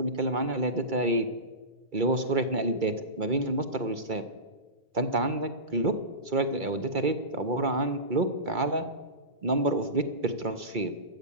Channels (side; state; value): left; late; 2.3 ms